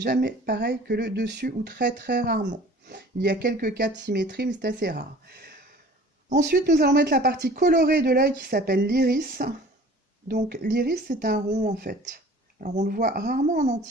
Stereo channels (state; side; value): normal; both; correlation 0.47